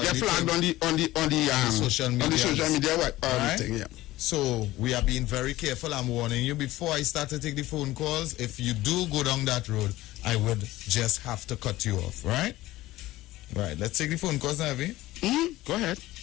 flagged on the social media. On the social media, right? Thing, yeah. So we are being very careful. I'm warning you before I start to take the phone calls. If you do go down that road, I would just have to cut you off. Right? Right. Let's take the phone calls now, Avi. Go ahead.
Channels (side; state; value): right; quieter; 17.0 dB